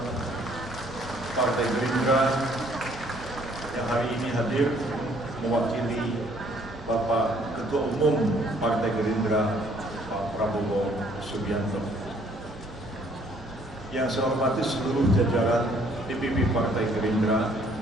Partai Gerindra yang hari ini hadir mewakili Bapak Ketua Umum Partai Gerindra Pak Prabowo Subianto. Yang saya hormati seluruh jajaran DPP Partai Gerindra,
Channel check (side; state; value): both; normal; correlation 0.62